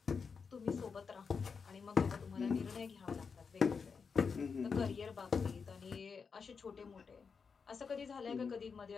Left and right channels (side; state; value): right; quieter; 5.6 dB